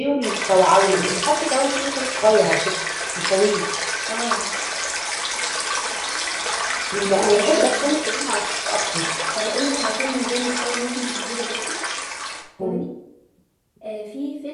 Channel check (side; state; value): both; identical; correlation 1.00